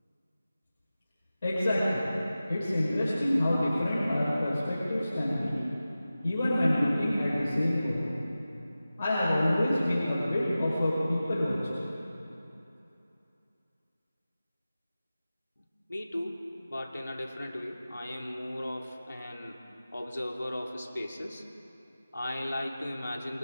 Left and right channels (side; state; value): both; inverted; correlation -0.95